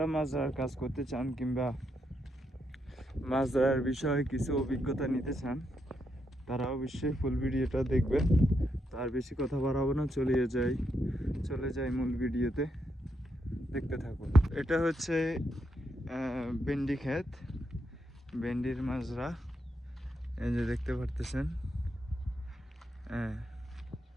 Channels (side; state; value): both; normal; correlation 0.81